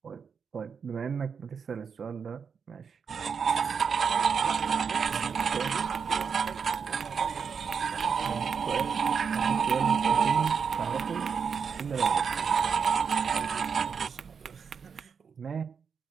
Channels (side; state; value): left; quieter; 6.3 dB